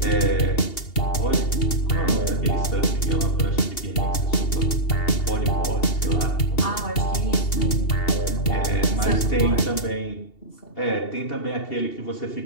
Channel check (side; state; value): right; late; 2.7 ms